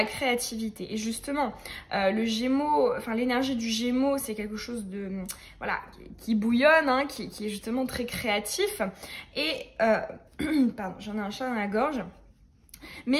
créativité. Et justement, le Gémeaux, enfin l'énergie du Gémeaux, c'est quelque chose de, voilà, qui bouillonne, hein, qui est justement très créatif. Et, pardon, j'en ai un chat dans la gorge.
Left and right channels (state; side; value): identical; both; correlation 1.00